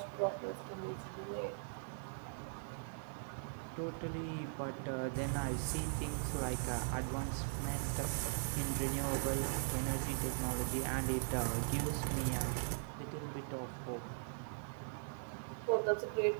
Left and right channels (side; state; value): left; silent; digital silence